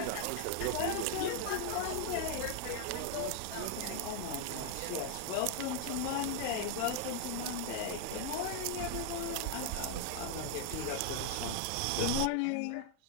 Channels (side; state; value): both; different; correlation 0.00